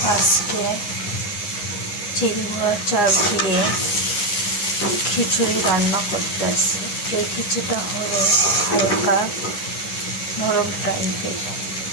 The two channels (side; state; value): right; late; 9.7 ms